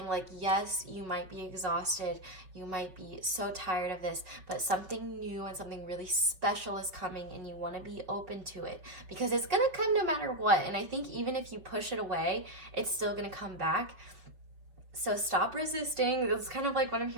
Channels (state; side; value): late; left; 5.3 ms